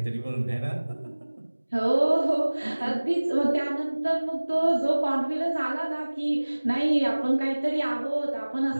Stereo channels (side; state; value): both; inverted; correlation -1.00